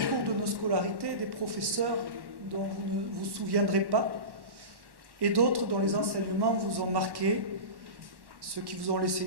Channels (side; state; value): left; late; 1.1 ms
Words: de nos scolarités des professeurs dont vous ne vous souviendrez pas et d'autres dont les enseignements vous ont marqué, ceux qui vous ont laissé